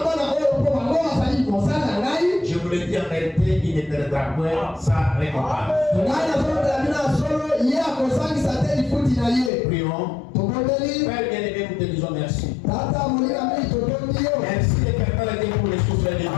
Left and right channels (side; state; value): right; drops out; at 9.5 s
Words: je vous le dis en vérité, il ne perdra point sa récompense. Prions. Père bien-aimé, nous te disons merci. Merci éternel Dieu pour les souffles de vie.